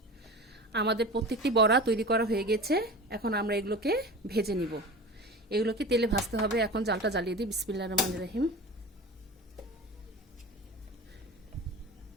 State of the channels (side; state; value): both; normal; correlation 0.33